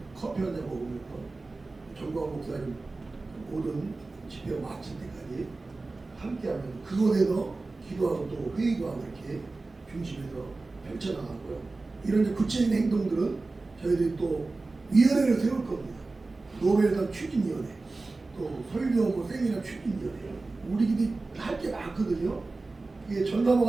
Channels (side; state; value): left; quieter; 3.5 dB